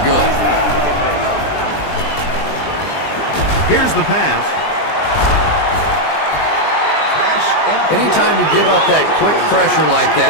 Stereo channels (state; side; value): late; right; 20 ms